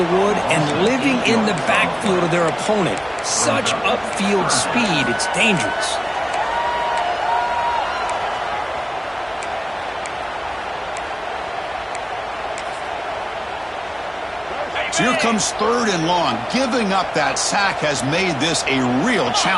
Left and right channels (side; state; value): both; identical; correlation 1.00